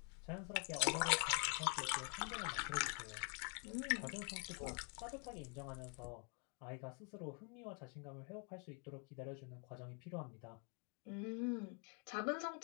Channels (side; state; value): right; quieter; 37.8 dB